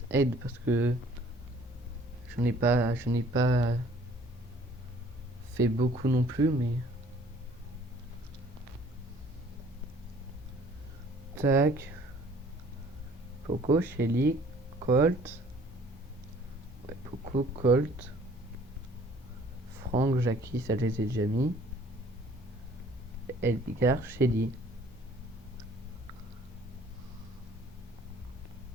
aide parce que je n'ai pas fait beaucoup non plus, mais... Tac. Poco, Shelly, Colt. Ouais, Poco, Colt. Franck, Jackie, ça je les ai déjà mis. Edgar, Shelly.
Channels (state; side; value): normal; both; correlation 0.55